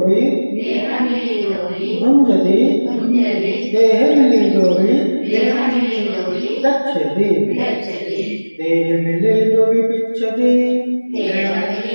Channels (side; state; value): both; inverted; correlation -1.00